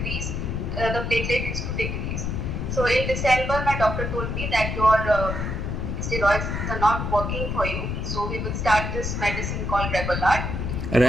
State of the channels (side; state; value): left; noise; rumble, 2 dB below the sound